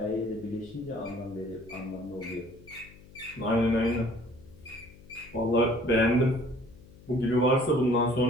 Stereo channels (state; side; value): noise; left; hum, 22 dB below the sound